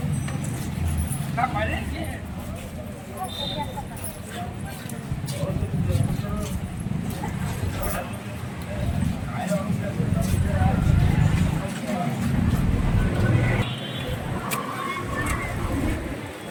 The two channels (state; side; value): identical; both; correlation 1.00